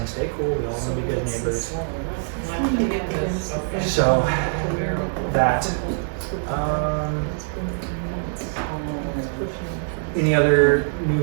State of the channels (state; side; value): silent; left; digital silence